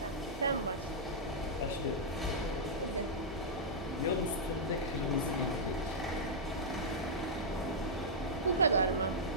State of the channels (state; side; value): normal; both; correlation -0.10